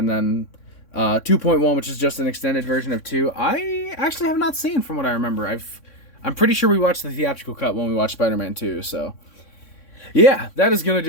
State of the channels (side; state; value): right; late; 3.6 ms